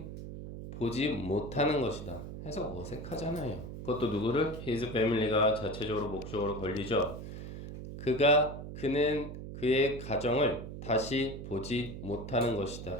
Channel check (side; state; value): right; noise; hum, 9 dB below the sound